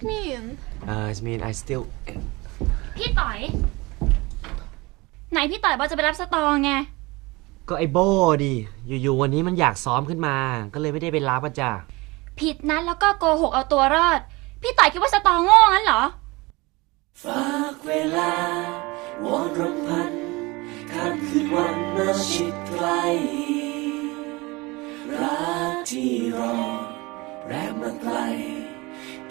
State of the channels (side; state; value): left; quieter; 23.6 dB